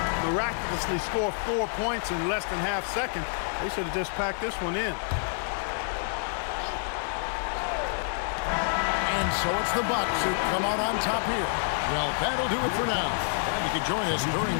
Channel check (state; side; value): silent; right; digital silence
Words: miraculously score 4 points in less than half second. They should have just packed this one in. And so it's the Bucks who come out on top here. Well, that'll do it for now. Glad you could join us during